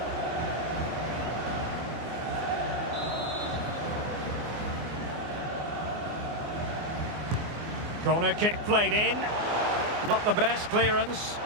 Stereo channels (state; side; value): late; left; 24 ms